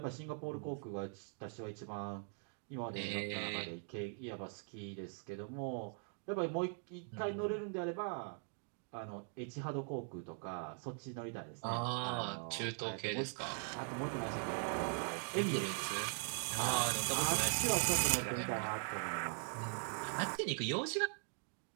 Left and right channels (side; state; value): left; silent; 50 dB below the other